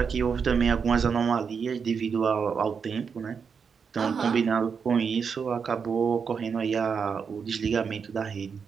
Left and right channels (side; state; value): left; quieter; 6.1 dB